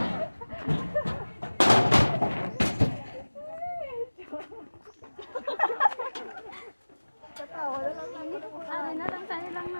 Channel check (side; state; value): both; inverted; correlation -1.00